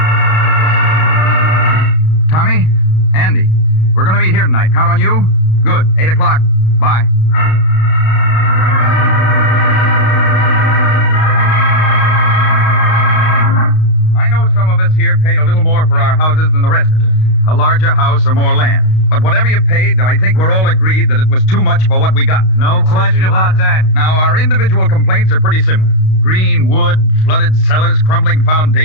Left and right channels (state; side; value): late; right; 32 ms